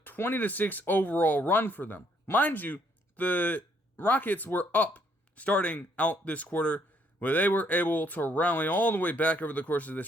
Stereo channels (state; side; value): normal; both; correlation 0.68